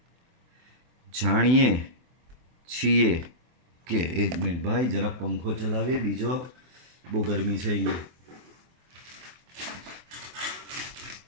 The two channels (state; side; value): late; left; 24 ms